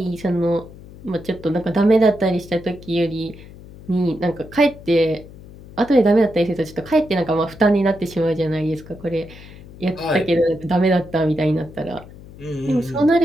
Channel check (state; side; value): noise; left; hum, 18 dB below the sound